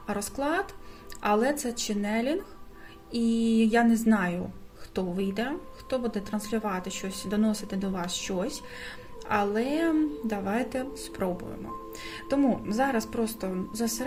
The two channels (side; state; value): both; identical; correlation 1.00